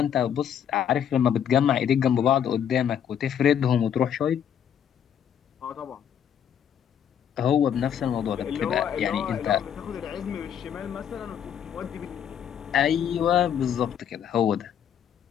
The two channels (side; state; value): right; quieter; 8.9 dB